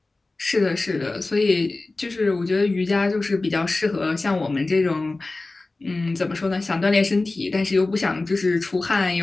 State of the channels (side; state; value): right; quieter; 3.2 dB